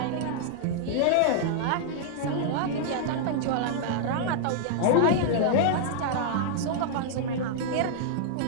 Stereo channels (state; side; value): different; both; correlation -0.01